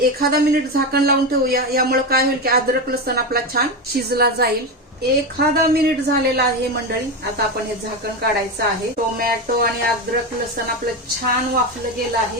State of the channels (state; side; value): normal; both; correlation 0.16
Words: मिनिट झाकण लावून ठेवूया। यामुळे काय होईल की अद्रक लसूण आपला छान शिजला जाईल। एखादा मिनिट झालेला आहे मंडळी, आता आपण हे झाकण काढायचं आहे। टोमॅटो आणि अद्रक लसूण आपलं छान वाफलं गेलं